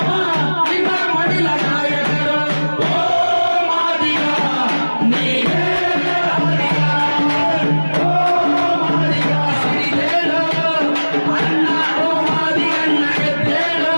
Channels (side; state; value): both; inverted; correlation -1.00